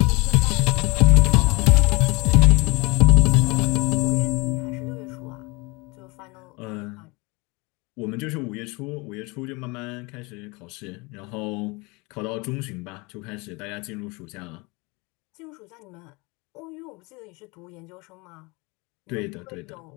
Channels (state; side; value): quieter; right; 26.7 dB